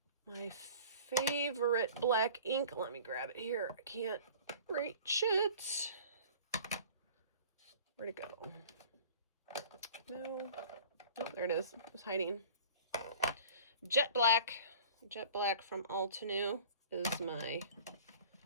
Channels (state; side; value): inverted; both; correlation -0.45